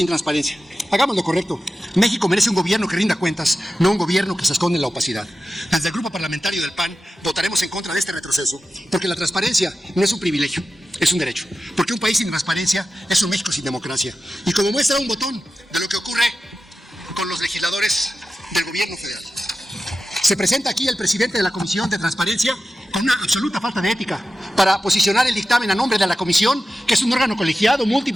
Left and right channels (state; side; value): normal; both; correlation 0.93